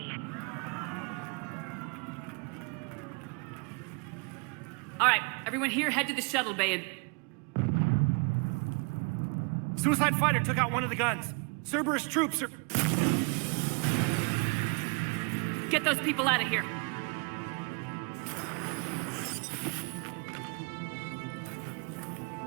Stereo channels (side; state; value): left; quieter; 33.0 dB